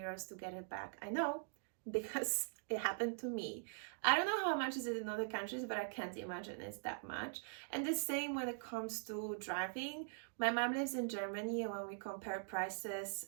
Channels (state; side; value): silent; left; digital silence